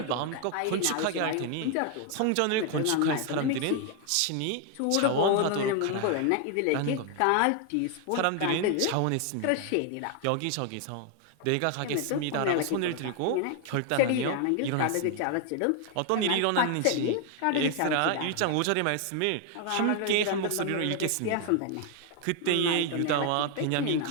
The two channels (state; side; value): different; both; correlation 0.00